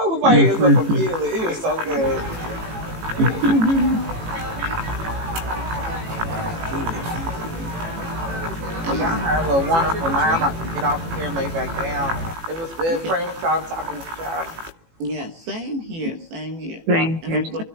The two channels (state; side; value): late; left; 18 ms